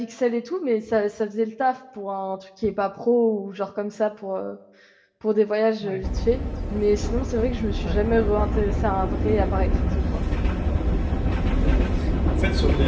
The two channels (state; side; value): identical; both; correlation 1.00